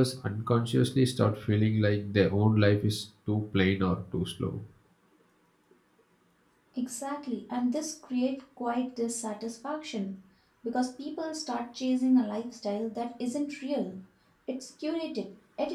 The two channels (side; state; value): both; identical; correlation 1.00